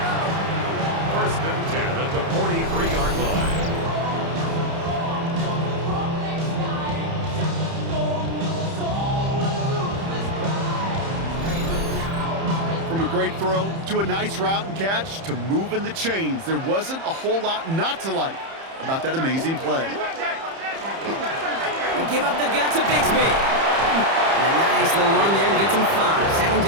1st and 10 at the 43-yard line. From a great throw to a nice route and catch to moving the chains, there wasn't a whole lot not to like about that amazing play. They give up the gut to Bigsby. And a nice little run there gets him 5. 2nd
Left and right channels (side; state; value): left; late; 30 ms